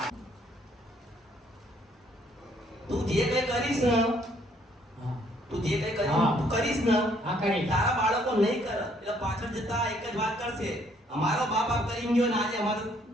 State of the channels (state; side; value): normal; both; correlation 0.65